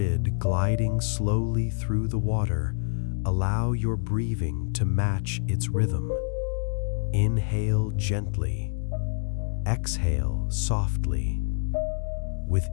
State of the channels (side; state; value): right; silent; digital silence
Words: gliding slowly through the water, allow your breathing to match its rhythm. Inhale gently, exhale softly. With